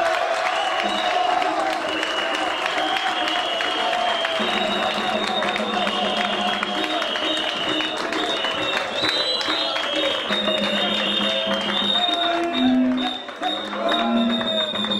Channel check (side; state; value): both; identical; correlation 1.00